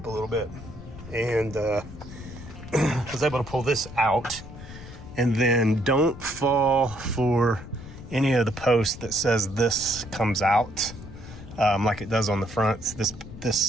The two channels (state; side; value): noise; left; rumble, 14 dB below the sound